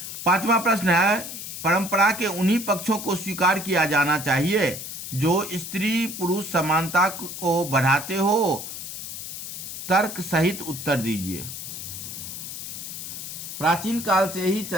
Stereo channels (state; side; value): noise; left; hiss, 8 dB below the sound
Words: 5वां प्रश्न है, परंपरा के उन्हीं पक्षों को स्वीकार किया जाना चाहिए जो स्त्री पुरुष समानता को बढ़ाते हो। तर्क सहित उत्तर दीजिए। प्राचीन काल से ही